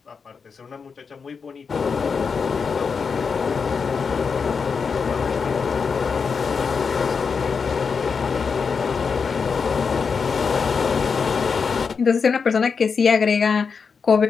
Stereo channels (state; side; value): quieter; right; 5.6 dB